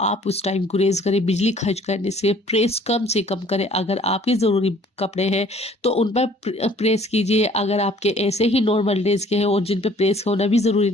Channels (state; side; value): normal; both; correlation 0.56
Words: आप उस टाइम गुरेज करें। बिजली खर्च करने से कम करें। अगर आपके ज़रूरी कपड़े हैं तो उन पर प्रेस कीजिए। अगर आपके ऐसे ही नॉर्मल डेज के हैं और जिन पे प्रेस होना भी ज़रूरी